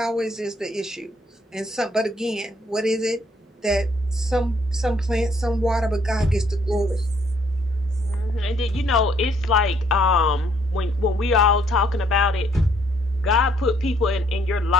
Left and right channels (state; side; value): normal; both; correlation 0.66